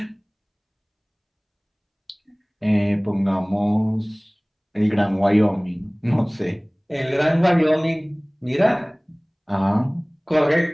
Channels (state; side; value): identical; both; correlation 1.00